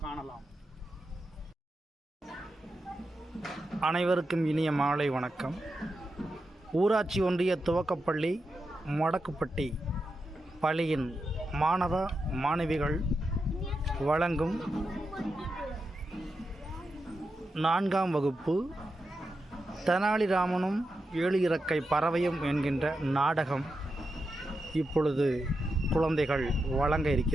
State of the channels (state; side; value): normal; both; correlation 0.88